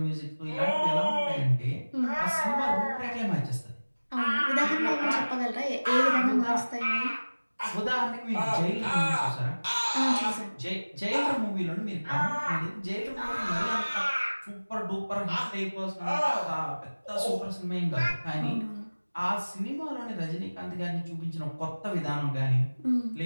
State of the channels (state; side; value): inverted; both; correlation -1.00